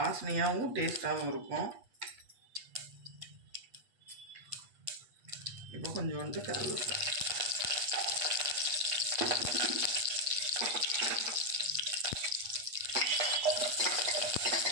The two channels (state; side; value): late; left; 8.4 ms